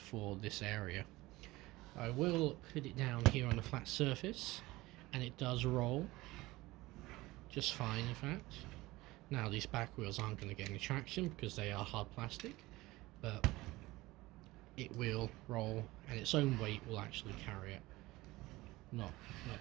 for this area. I will put it down here on a flat surface, and it does roll just fine, in fact. Now, these back wheels aren't going to get any traction because they are hard plastic, but it will roll, and its own weight will actually carry it. Not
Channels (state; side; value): quieter; left; 19.6 dB